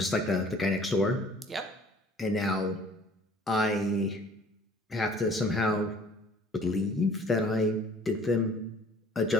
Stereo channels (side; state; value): both; normal; correlation 0.52